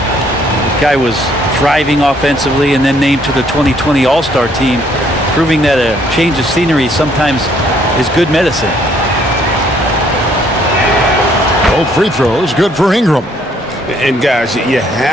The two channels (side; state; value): both; normal; correlation 0.65